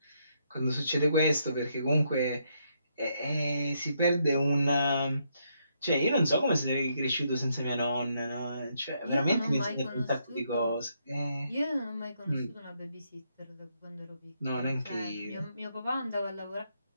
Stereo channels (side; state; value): both; inverted; correlation -0.76